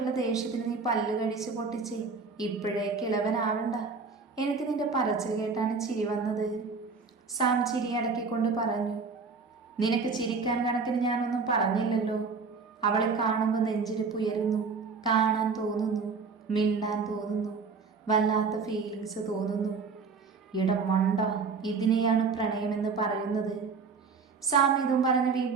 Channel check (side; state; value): left; quieter; 4.9 dB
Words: ദേഷ്യത്തിന് നീ പല്ല് കടിച്ച് പൊട്ടിച്ചേ ഇപ്പോഴേ കിളവനാവണ്ട. എനിക്ക് നിന്റെ പറച്ചിൽ കേട്ടാണ് ചിരി വന്നത്. സാം ചിരി അടക്കിക്കൊണ്ട് പറഞ്ഞു. നിനക്ക് ചിരിക്കാൻ കണക്കിന് ഞാനൊന്നും പറഞ്ഞില്ലല്ലോ. അവളെ കാണുമ്പോൾ നെഞ്ചിടിപ്പ് ഉയരുന്നു, കാണാൻ തോന്നുന്നു, മിണ്ടാൻ തോന്നുന്നു, വല്ലാത്ത ഫീലിങ്സ് തോന്നുന്നു. ഇടം മണ്ട, ഇതിനെയാണ് പ്രണയമെന്ന് പറയുന്നത്. സാം ഇതും പറഞ്ഞ്